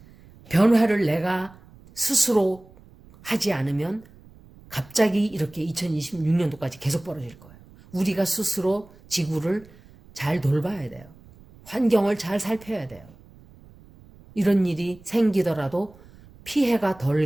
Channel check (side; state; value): right; noise; rumble, 24 dB below the sound